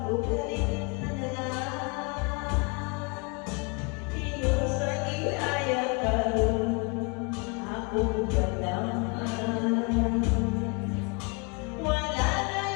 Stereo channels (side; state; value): right; quieter; 32.8 dB